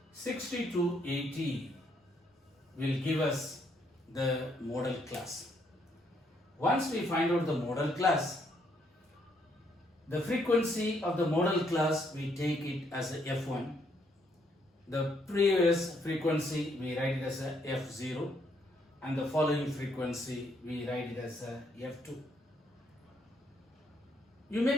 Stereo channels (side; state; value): both; normal; correlation 0.72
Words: 60 to 80 will give us the model class. Once we find out the model class, the frequency of the model class, we take it as a F1. The previous frequency, we write it as a F0, and the following frequency, we write it as a F2. You